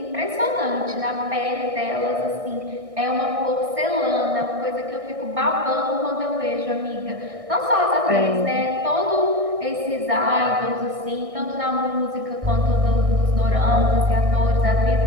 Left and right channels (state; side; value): late; left; 1.6 ms